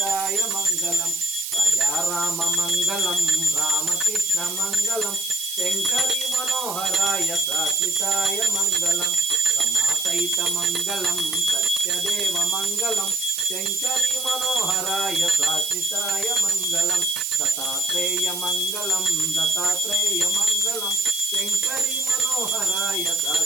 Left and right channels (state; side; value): noise; right; hiss, 6 dB below the sound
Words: మంగళం రాజారామ మంగళం రామకృష్ణ మంగళం శంకరి మనోహరాయ శాశ్వతాయ మంగళం సమాసైత మంగళం సత్యదేవ మంగళం శంకరి మనోహరాయ శాశ్వతాయ మంగళం దత్తాత్రేయ మంగళం శంకరి మనోహరాయ